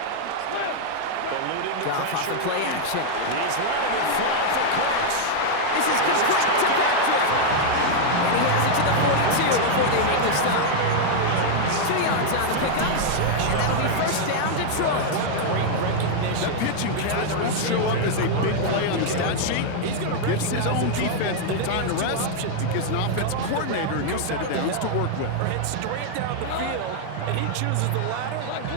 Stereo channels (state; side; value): different; both; correlation 0.00